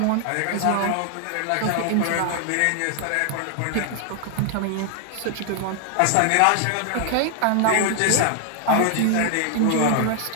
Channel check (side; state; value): both; different; correlation 0.00